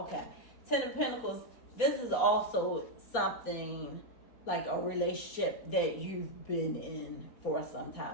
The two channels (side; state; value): right; late; 4.2 ms